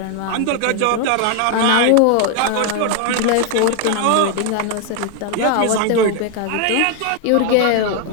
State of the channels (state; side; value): different; both; correlation 0.01